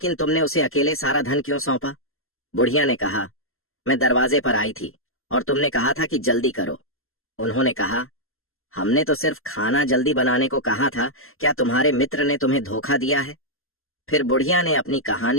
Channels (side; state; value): right; late; 0.62 ms